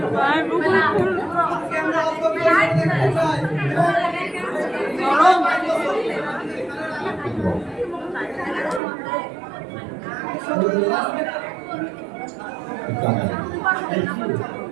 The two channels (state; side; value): drops out; left; at 8.8 s